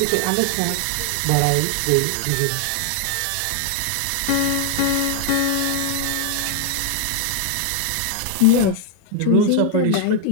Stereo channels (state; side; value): different; both; correlation 0.00